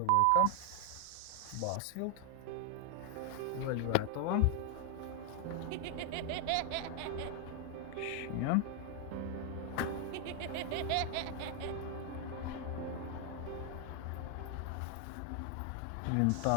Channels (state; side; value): different; both; correlation 0.00